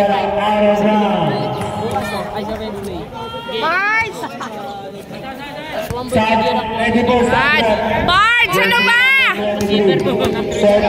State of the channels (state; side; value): identical; both; correlation 1.00